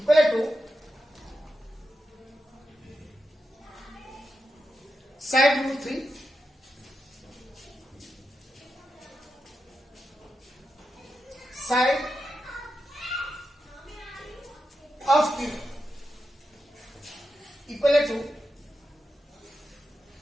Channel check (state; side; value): normal; both; correlation 0.88